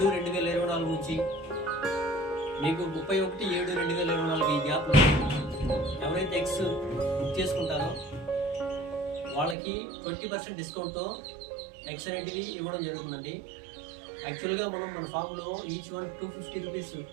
నుంచి మీకు 31/7/2024 ఈ గ్యాప్లో ఎవరైతే ఎగ్స్ బుక్ చేసుకుంటారో వాళ్ళకి 20% డిస్కౌంట్తో ఎగ్స్ అనేటివి ఇవ్వడం జరుగుతుందండి. యాక్చువల్గా మనం మన ఫామ్లో ఈచ్ వన్ 250 రూపీస్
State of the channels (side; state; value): left; drops out; at 9.6 s